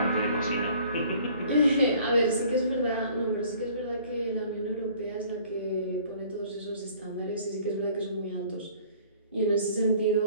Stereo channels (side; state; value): both; inverted; correlation -0.54